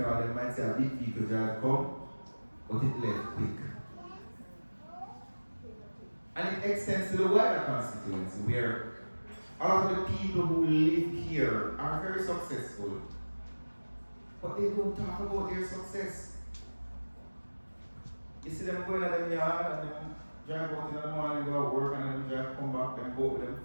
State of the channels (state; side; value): inverted; both; correlation -1.00